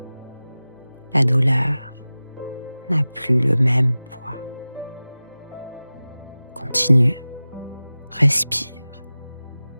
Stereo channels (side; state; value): both; inverted; correlation -0.97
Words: la douleur n'a plus le même poids. Continue, respire,